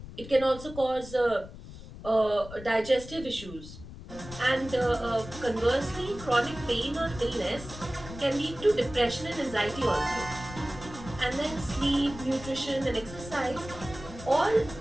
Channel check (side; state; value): left; noise; rumble, 14 dB below the sound